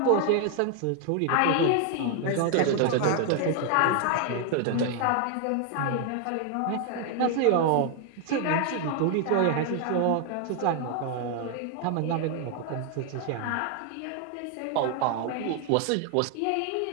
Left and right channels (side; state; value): both; different; correlation 0.00